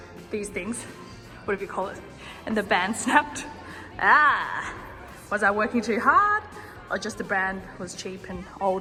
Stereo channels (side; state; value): both; identical; correlation 1.00